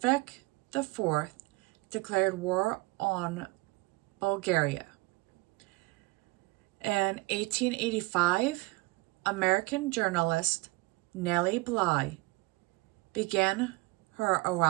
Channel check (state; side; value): quieter; left; 23.5 dB